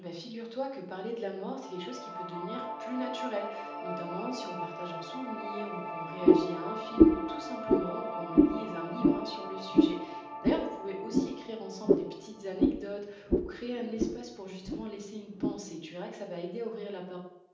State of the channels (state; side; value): identical; both; correlation 1.00